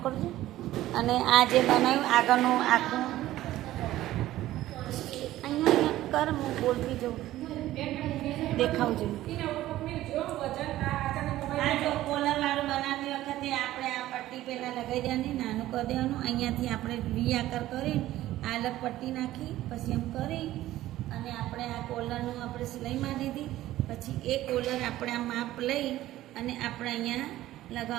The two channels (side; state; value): left; quieter; 14.9 dB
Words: અને આ જે બનાવ્યું આગળનું આખું અહીંયા કર, હું બોલતી જાઉં, દેખાવજો. આ જો કોલરવાળું બનાવતી વખતે આપણે આ પટ્ટી પહેલાં લગાવી દેવાની, નાનું કરી દેવાનું. અહીંયાથી આપણે વી આકાર કરી આ અલગ પટ્ટી નાખી પછી એમ કરી અને આપણે આ કોલરનું આપણે સિલાઈ મારી દીધી. પછી એ કોલર આપણે આ માપ લઈ અને આપણે અહીંયા